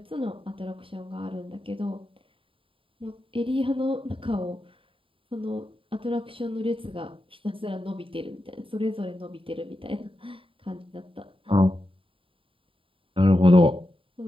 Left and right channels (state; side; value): late; left; 0.25 ms